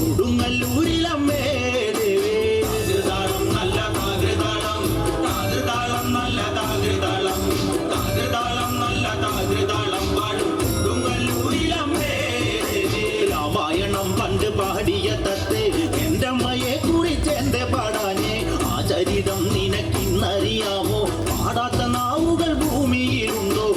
ദേവി. താകൃതാളം നല്ല താകൃതാളം, താകൃതാളം നല്ല താകൃതാളം, താകൃതാളം നല്ല താകൃതാളം വാഴും കൊടുങ്ങല്ലൂരിലമ്മേ ദേവി. രാമായണം പണ്ട് പാടിയ തത്തെ എൻ്റെ അമ്മയെ കുറിച്ച് എന്റെ പാടാഞ്ഞേ. ആ ചരിതം നിനക്കിന്നറിയാമോ? പാടാത്ത നാവുകൾ ഭൂമിയിലുണ്ടോ?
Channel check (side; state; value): both; identical; correlation 1.00